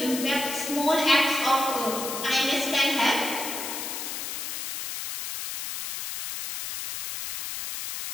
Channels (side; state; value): left; noise; hiss, 6 dB below the sound